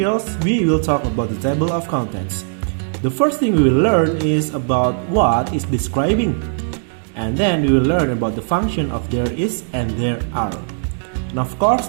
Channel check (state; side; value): silent; left; digital silence